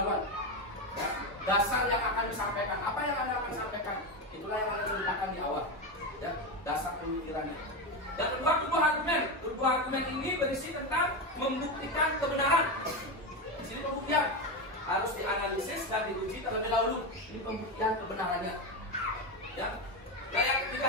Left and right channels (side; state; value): both; normal; correlation 0.14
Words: Ya, dasar yang akan disampaikan. Apa yang Anda akan sampaikan? Itulah yang Anda ceritakan di awal. Ya, dasar pemikirannya. Yang kedua, tubuh argumen. Tubuh argumen ini berisi tentang membuktikan kebenaran. Di sini pembuktian. harus dianalisis dan diuji terlebih dahulu. Ini pembuktian kebenarannya. Ya. Nah, yang